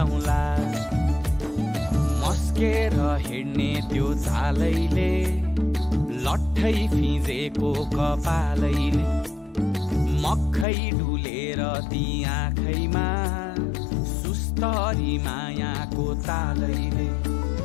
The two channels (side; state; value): right; drops out; at 10.7 s